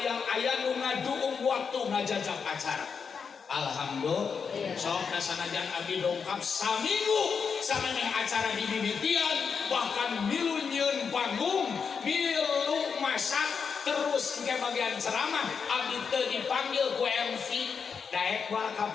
nu ngaduung waktu ngajajak acara alhamdulillah sok dasanajan abdi dongkap saminggu samemeh acara di mimitian bahkan milu nyieun panggung milu masak terus ke bagian ceramah abdi teu dipanggil ku MC daek wal ka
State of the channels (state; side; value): quieter; right; 6.1 dB